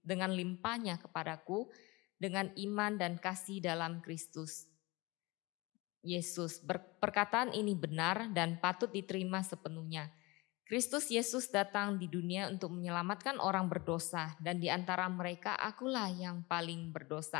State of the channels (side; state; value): right; quieter; 24.0 dB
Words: dengan limpahnya kepadaku, dengan iman dan kasih dalam Kristus Yesus. Perkataan ini benar dan patut diterima sepenuhnya. Kristus Yesus datang di dunia untuk menyelamatkan orang berdosa, dan di antara mereka akulah yang paling